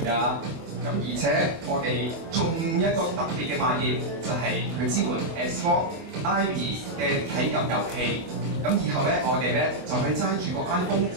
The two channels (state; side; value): late; left; 25 ms